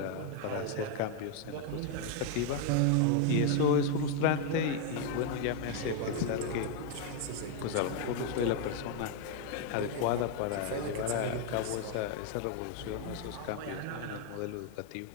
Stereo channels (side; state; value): both; different; correlation 0.00